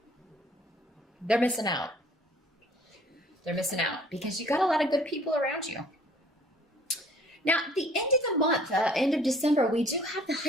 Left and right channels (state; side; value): normal; both; correlation 0.55